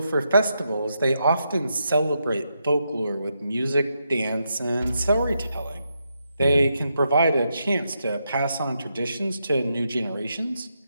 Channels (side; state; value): both; inverted; correlation -0.82